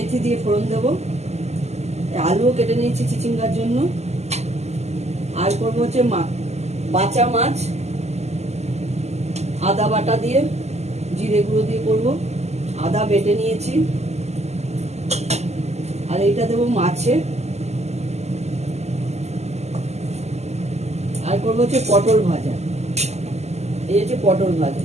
দিয়ে ফোড়ন দেবো। আলুও কেটে নিয়েছি চিচিঙ্গার জন্য। আর করবো হচ্ছে বাঁচা মাছ আদা বাটা দিয়ে জিরে গুঁড়ো দিয়ে করবো। আদা বেটে নিয়েছি। আর এইটা দেবো মাছে। আর করবো হচ্ছে পটল ভাজা। এই হচ্ছে পটল ভাজা,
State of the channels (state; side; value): late; left; 0.32 ms